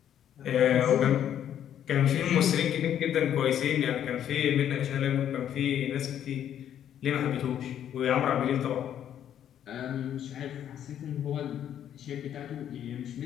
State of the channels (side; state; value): right; quieter; 10.1 dB